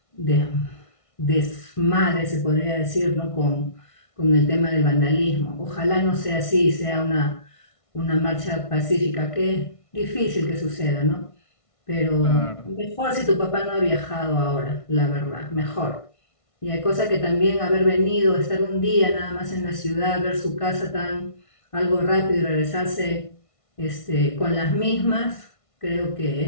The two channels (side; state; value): right; late; 1.5 ms